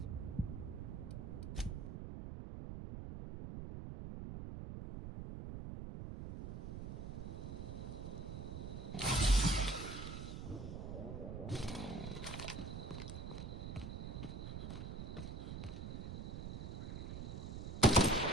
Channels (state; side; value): noise; right; rumble, 6 dB below the sound